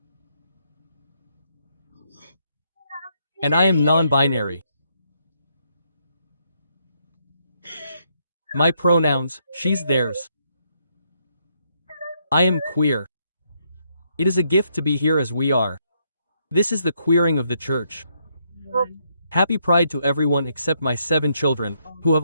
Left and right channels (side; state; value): both; inverted; correlation -0.75